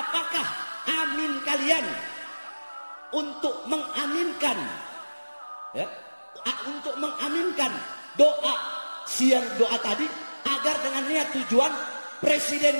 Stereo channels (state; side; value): inverted; both; correlation -1.00